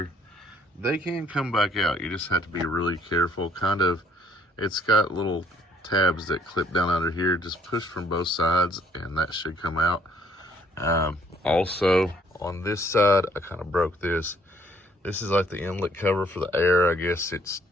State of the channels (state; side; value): normal; both; correlation 0.63